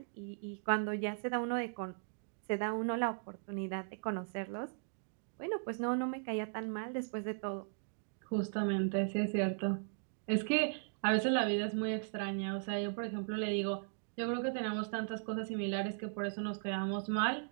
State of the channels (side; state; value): left; silent; digital silence